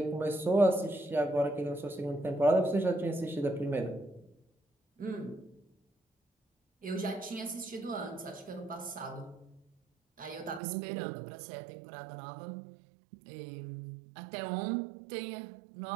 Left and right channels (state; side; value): drops out; left; at 10.6 s